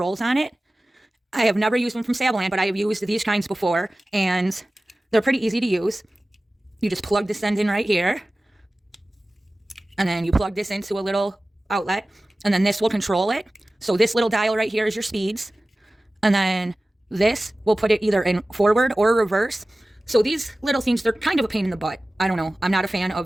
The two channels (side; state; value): both; normal; correlation 0.97